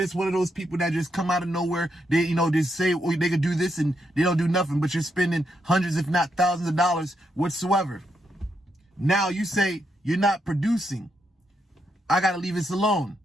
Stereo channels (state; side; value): normal; both; correlation 0.80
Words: one of those people that just come out of nowhere. They, you know, they say they could do this and they don't do nothing, but you're spending hundreds, if not thousands of dollars whatsoever. Now you say you're not producing. I got to leave this alone.